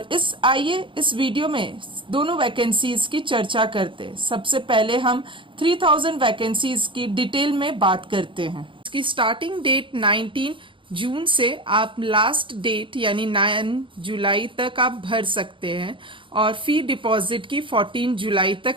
आइए इस वीडियो में दोनों वैकेंसीज की चर्चा करते हैं। सबसे पहले हम 3000 वैकेंसीज की डिटेल में बात करते हैं। इसकी स्टार्टिंग डेट 19 जून से आप लास्ट डेट यानी 9 जुलाई तक आप भर सकते हैं, और फी डिपॉजिट की 14 जुलाई तक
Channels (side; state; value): left; late; 0.24 ms